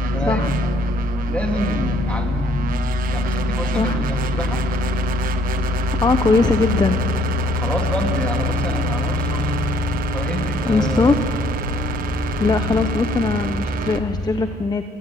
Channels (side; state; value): both; normal; correlation 0.64